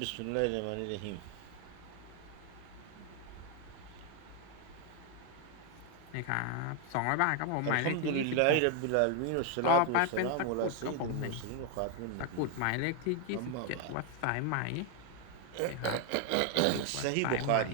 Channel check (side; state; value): both; different; correlation 0.01